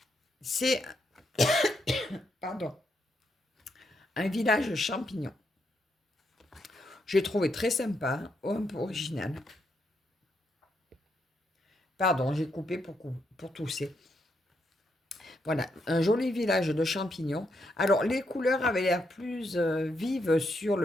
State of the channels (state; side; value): normal; both; correlation 0.79